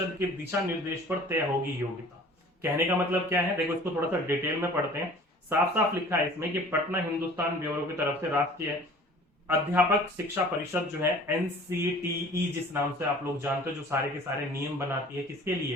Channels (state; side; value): normal; both; correlation 0.47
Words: के दिशा निर्देश पर तय होगी योग्यता। कहने का मतलब क्या है, देखो इसको थोड़ा सा डिटेल में पढ़ते हैं। साफ साफ लिखा है इसमें कि पटना हिंदुस्तान ब्यूरो की तरफ से राष्ट्रीय अध्यापक शिक्षा परिषद जो है, एनसीटीई जिस नाम से आप लोग जानते हो, जो सारे के सारे नियम बनाती है, किसके